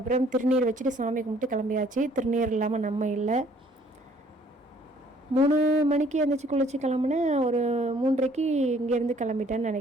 திருநீர் வச்சுட்டு சாமி கும்பிட்டு கிளம்பியாச்சு. திருநீர் இல்லாமல் நம்ம இல்லை. 3 மணிக்கு எழுந்திரிச்சி குளிச்சு கிளம்புனேன். ஒரு 3:30க்கு இங்கேருந்து கிளம்பிட்டேன்னு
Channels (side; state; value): both; normal; correlation 0.60